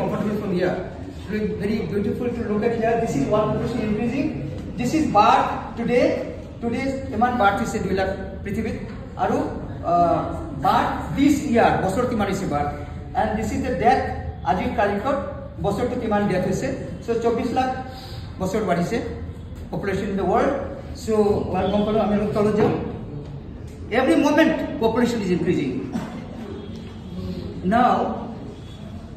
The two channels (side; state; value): both; identical; correlation 1.00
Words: from here. It's very beautiful to look at here. This is world population increasing. This is birth today. Today's iman birth is 2 lakh Prithivit. Aru birth this year, bosor kiman is birth. And this is the death. Ajit Kalikot, bosor to kiman death is. So 24 lakh bosor body se population in the world. So one component every moment population is increasing. Now